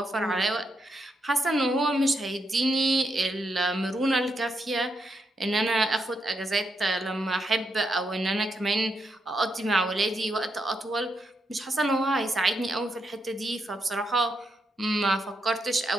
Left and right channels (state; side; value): normal; both; correlation 0.81